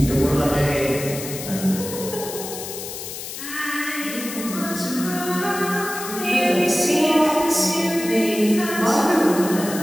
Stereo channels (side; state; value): left; noise; hiss, 9 dB below the sound